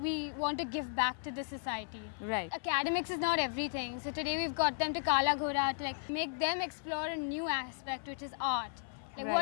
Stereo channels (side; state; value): right; silent; 54 dB below the other